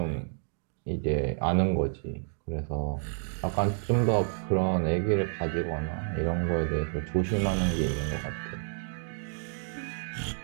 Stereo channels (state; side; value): silent; left; digital silence